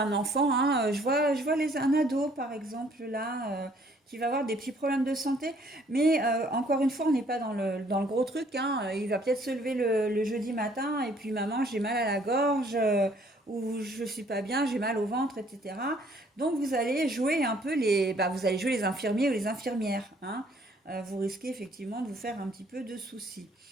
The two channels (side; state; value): both; normal; correlation 0.62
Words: enfant, hein, je vois un ado par exemple là qui va avoir des petits problèmes de santé, mais encore une fois, on n'est pas dans le gros truc, hein. Il va peut-être se lever le jeudi matin et puis maman, j'ai mal à la gorge ou je suis pas bien, j'ai mal au ventre, etc. Donc vous allez jouer un peu vous allez jouer les infirmiers ou les infirmières, hein. Vous risquez effectivement de vous faire un petit peu de soucis.